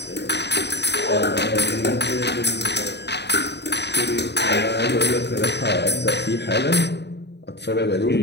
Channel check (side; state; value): right; late; 0.50 ms